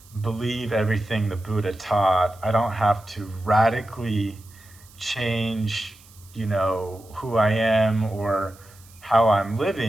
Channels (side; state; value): right; noise; hiss, 25 dB below the sound